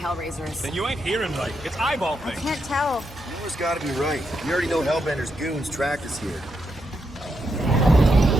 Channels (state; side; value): normal; both; correlation 0.82